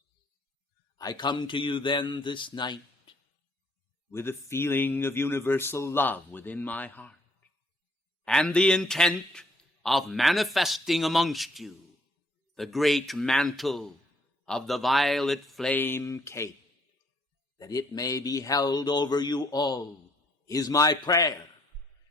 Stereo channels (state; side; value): normal; both; correlation 0.66